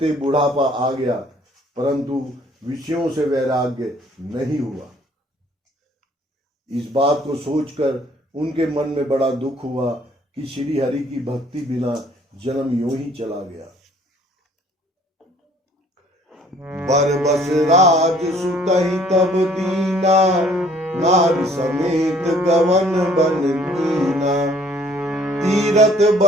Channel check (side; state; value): both; normal; correlation 0.58